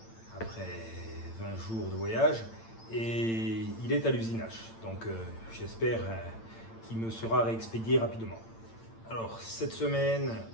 après 20 jours de voyage et il est à l'usinage, donc j'espère qu'il me sera réexpédié rapidement. Alors cette semaine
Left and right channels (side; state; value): right; late; 8.9 ms